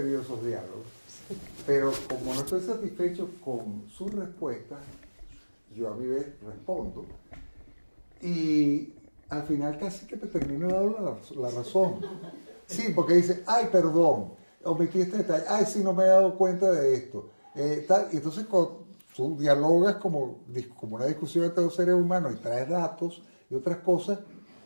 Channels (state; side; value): inverted; both; correlation -1.00